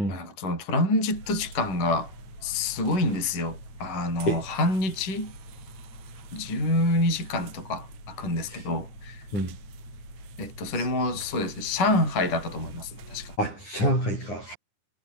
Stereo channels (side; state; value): right; late; 10 ms